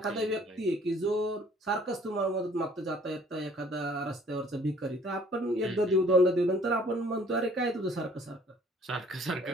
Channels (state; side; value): normal; both; correlation 0.57